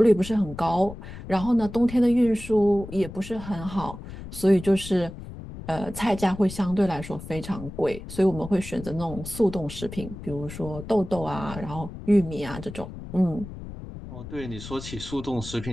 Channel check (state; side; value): noise; left; rumble, 12 dB below the sound